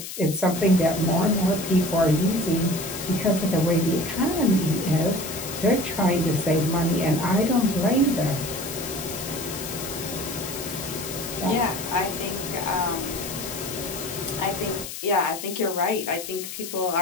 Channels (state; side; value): noise; left; hiss, 9 dB below the sound